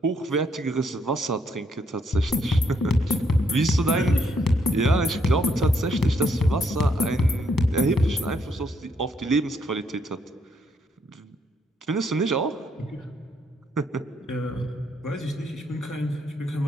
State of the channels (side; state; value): both; normal; correlation 0.73